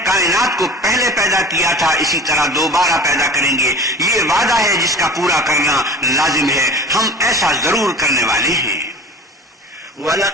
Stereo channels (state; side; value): normal; both; correlation 0.39